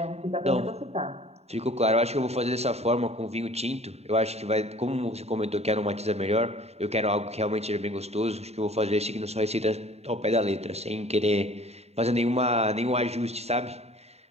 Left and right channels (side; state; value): left; late; 0.31 ms